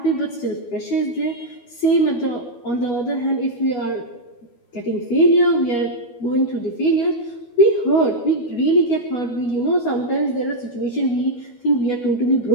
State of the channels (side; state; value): right; late; 12 ms